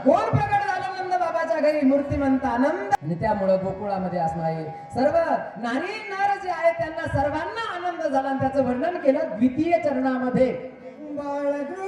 कोण प्रगट झालं नंद बाबाच्या घरी? मूर्तिमंत आनंद. आणि त्यामुळे गोकुळामध्ये असणारे सर्व नारी नार जे आहेत त्यांना सर्वांना आनंद झाला. आणि त्याचं वर्णन केलं द्वितीय चरणामध्ये.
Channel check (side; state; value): both; identical; correlation 1.00